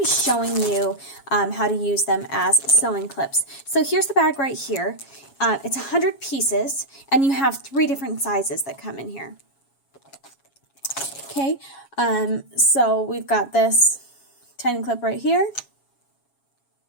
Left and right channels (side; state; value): right; late; 7.3 ms